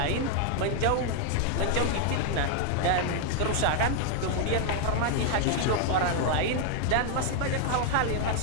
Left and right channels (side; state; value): both; different; correlation 0.00